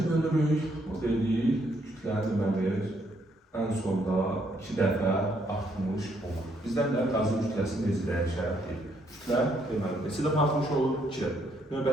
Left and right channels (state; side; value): normal; both; correlation 0.72